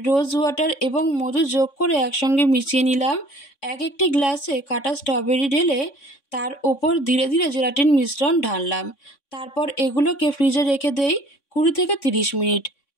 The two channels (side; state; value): right; late; 3.6 ms